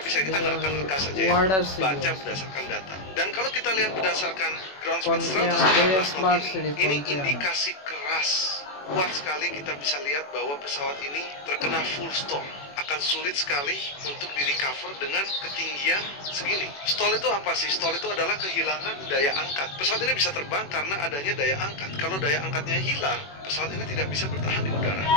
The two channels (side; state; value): right; late; 21 ms